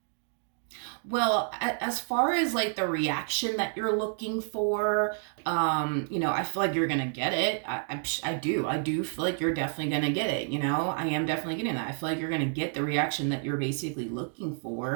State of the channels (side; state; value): left; silent; 58 dB below the other